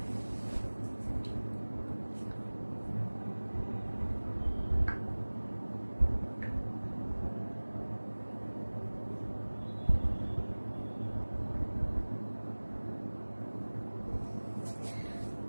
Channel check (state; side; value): inverted; both; correlation -1.00